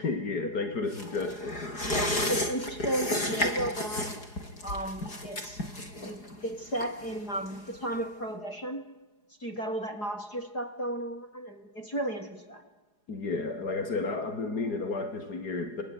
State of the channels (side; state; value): right; late; 4.8 ms